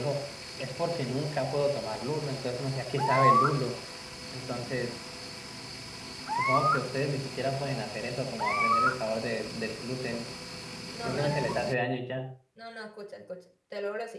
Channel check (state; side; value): identical; both; correlation 1.00